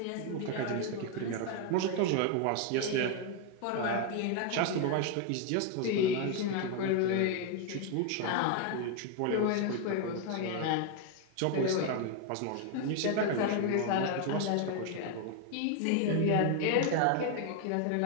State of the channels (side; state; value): both; different; correlation 0.01